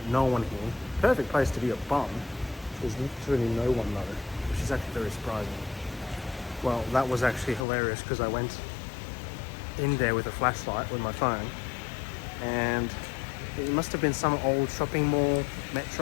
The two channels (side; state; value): right; drops out; at 7.7 s